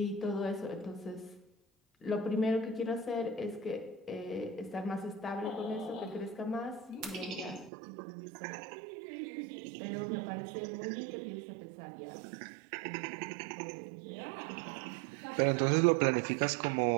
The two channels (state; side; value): drops out; left; at 7.7 s